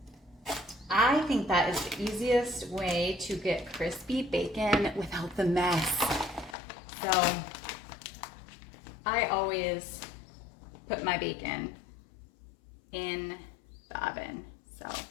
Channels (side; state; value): right; drops out; at 6.6 s